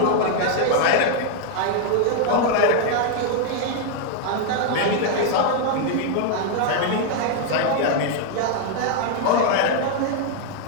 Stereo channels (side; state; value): both; different; correlation 0.00